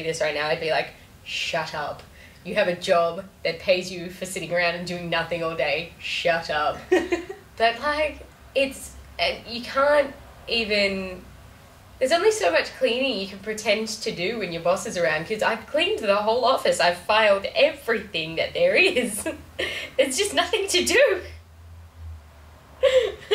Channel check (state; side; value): identical; both; correlation 1.00